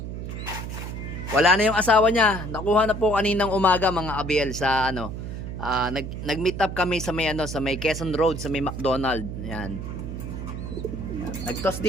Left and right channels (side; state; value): right; noise; hum, 7 dB below the sound